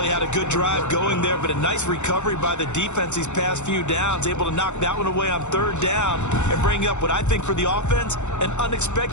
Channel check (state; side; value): late; right; 0.83 ms